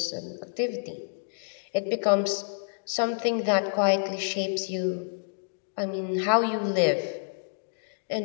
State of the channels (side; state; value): right; silent; digital silence